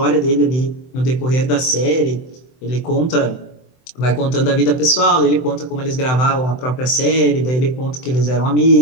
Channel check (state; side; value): late; right; 24 ms